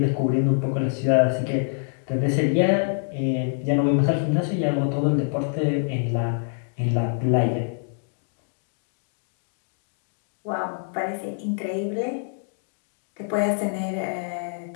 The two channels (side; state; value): right; silent; digital silence